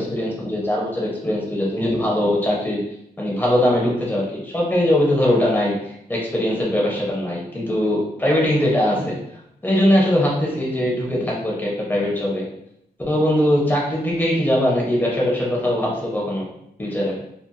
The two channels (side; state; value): both; normal; correlation 0.80